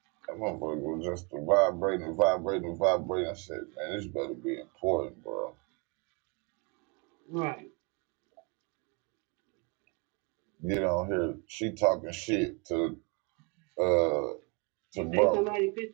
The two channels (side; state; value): left; quieter; 31.5 dB